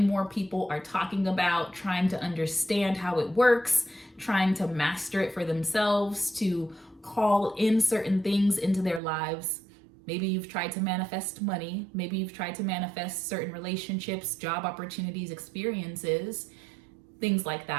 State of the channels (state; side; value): drops out; left; at 9.0 s